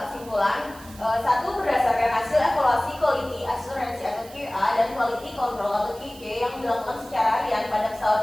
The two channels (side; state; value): right; noise; hiss, 20 dB below the sound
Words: kesimpulan. Satu, berdasarkan hasil evaluasi quality assurance atau QA dan quality control atau QC yang dilakukan secara harian pada